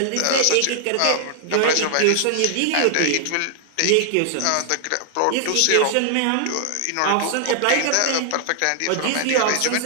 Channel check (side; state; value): both; different; correlation 0.00